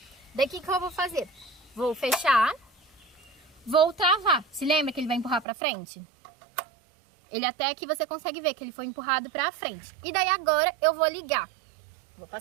Daqui que eu vou fazer? Vou fechar, vou travar. Se lembra que ele vai empurrar pra frente? Ele até aqui você consegue ver que ele foi empurrado pra frente. E daí agora eu vou ligar. Vou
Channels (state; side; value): drops out; left; at 5.5 s